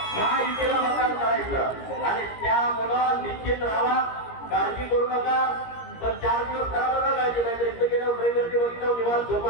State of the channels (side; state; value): right; late; 17 ms